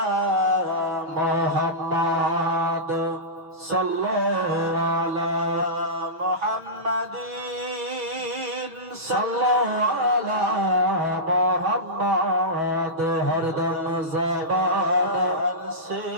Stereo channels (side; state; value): left; late; 6.2 ms